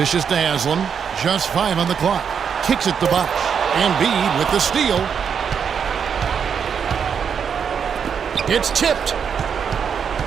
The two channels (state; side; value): quieter; left; 7.1 dB